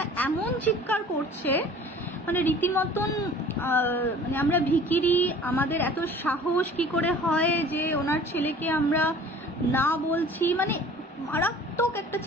এমন চিৎকার করছে, মানে রীতিমতন মানে আমরা ভিখিরি, আমাদের এত সাহস কি করে হয় যে ওনার ছেলেকে আমরা না বলছি, মানে মারাত্মক একটা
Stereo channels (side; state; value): both; normal; correlation 0.47